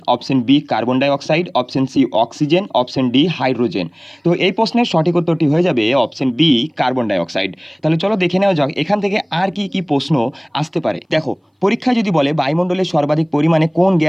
option B carbon dioxide, option C oxygen, option D hydrogen. তো এই প্রশ্নের সঠিক উত্তরটি হয়ে যাবে option B carbon dioxide. তাহলে চলো দেখে নেওয়া যাক এখান থেকে আর কি কি প্রশ্ন আসতে পারে। দেখো, পরীক্ষায় যদি বলে বায়ুমণ্ডলে সর্বাধিক পরিমাণে কোন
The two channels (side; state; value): both; identical; correlation 1.00